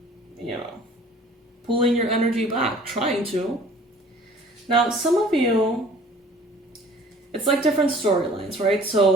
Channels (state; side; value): normal; both; correlation 0.50